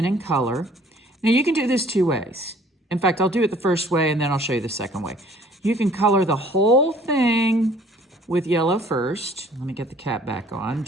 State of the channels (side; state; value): both; normal; correlation 0.55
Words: and color. Now you can do this two ways. In fact, I'll do it the first way and then I'll show you the second way. You can color the whole thing with yellow first. Let me get the cap back on